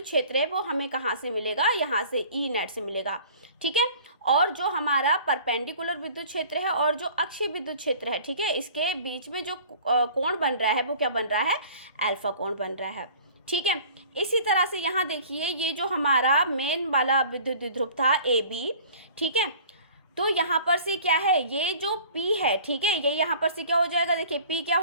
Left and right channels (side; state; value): both; inverted; correlation -0.47